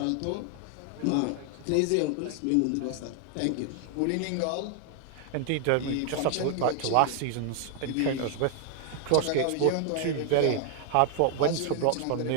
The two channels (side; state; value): both; different; correlation 0.00